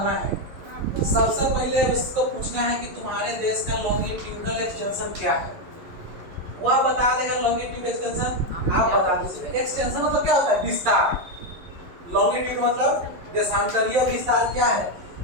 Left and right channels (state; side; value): late; left; 11 ms